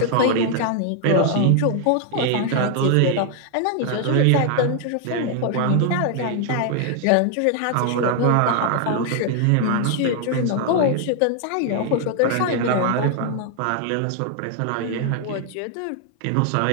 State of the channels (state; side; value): different; both; correlation 0.00